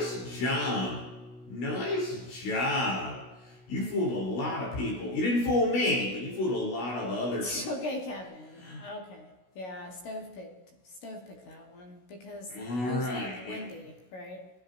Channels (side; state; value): right; late; 16 ms